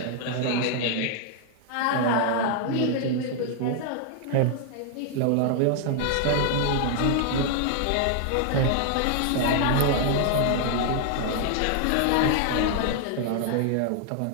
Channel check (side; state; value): both; different; correlation 0.00